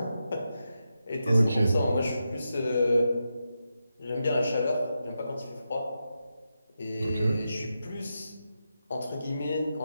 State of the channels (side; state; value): both; inverted; correlation -0.88